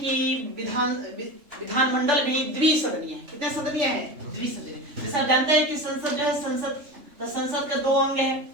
विधानमंडल भी द्विसदनीय है। कितने सदनीय है, द्विसदनीय। जैसा जानते हैं कि संसद जो है, संसद के दो अंग है,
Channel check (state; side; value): late; left; 3.3 ms